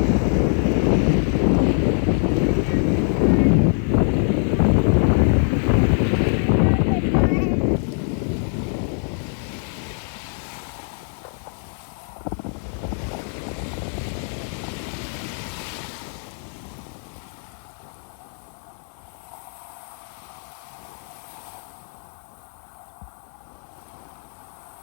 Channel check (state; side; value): silent; right; 57 dB below the other